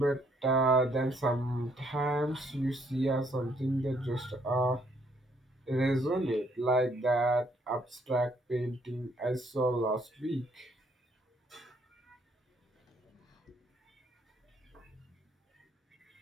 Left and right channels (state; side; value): normal; both; correlation 0.68